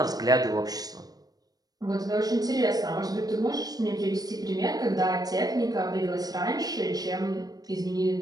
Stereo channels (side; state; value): left; late; 0.18 ms